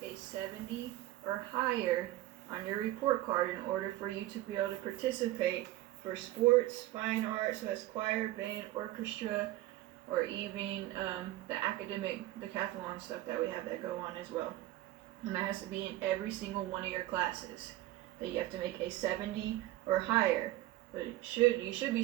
a 70 or higher on your report card in order for you to be able to participate for sports, fine arts, so that's choir, band, orchestra, or even the academic decathlon stuff that we have that go on as well. And that has to be in every single one of your classes. That you have to make a 70 or higher. But you should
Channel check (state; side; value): quieter; left; 16.1 dB